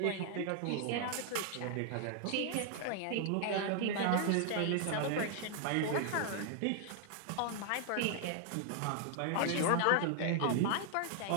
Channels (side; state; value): both; different; correlation 0.00